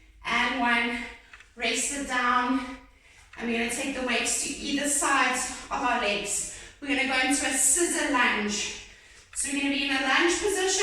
and 1. Rest it down. And we're going to take the weights to either side of our legs. We're going to go into a scissor lunge. So we're going to be in a lunge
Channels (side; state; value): both; identical; correlation 1.00